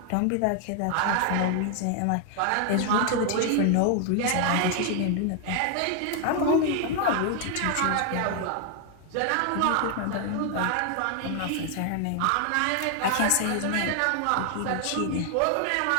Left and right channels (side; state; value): both; different; correlation 0.00